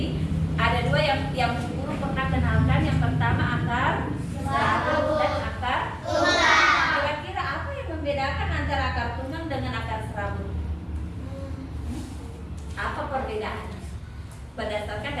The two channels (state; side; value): identical; both; correlation 1.00